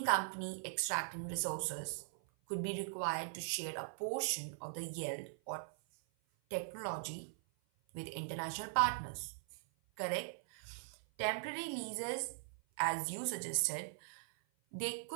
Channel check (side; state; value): left; silent; 51 dB below the other